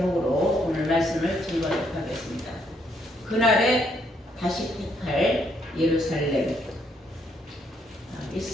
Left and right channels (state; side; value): normal; both; correlation 0.72